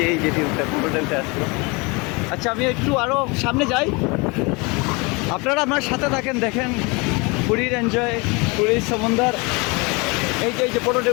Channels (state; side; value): quieter; right; 27.8 dB